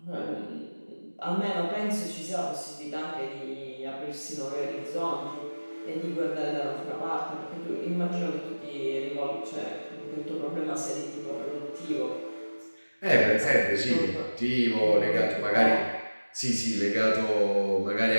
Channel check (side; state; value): both; inverted; correlation -1.00